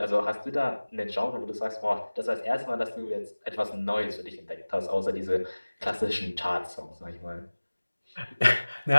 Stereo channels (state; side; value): inverted; both; correlation -1.00